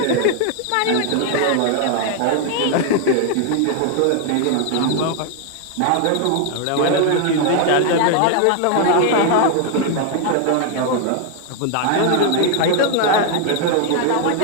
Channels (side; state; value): both; different; correlation 0.01